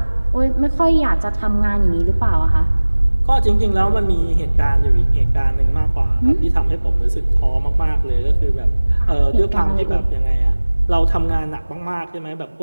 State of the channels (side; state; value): both; inverted; correlation -1.00